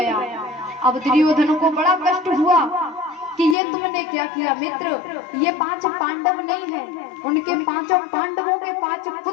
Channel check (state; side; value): drops out; right; at 3.6 s